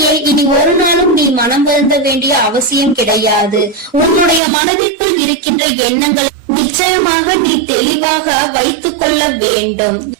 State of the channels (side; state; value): left; drops out; at 4.4 s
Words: இனி ஒரு நாளும் நீ மனம் வருந்த வேண்டிய அவசியம் கிடையாது. உன்னுடைய மனதிற்குள் இருக்கின்ற எண்ணங்கள் நிச்சயமாக நீ தெளிவாக வைத்துக் கொள்ள வேண்டும்.